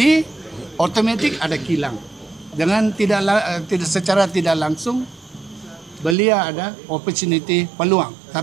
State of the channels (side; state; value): left; drops out; at 6.2 s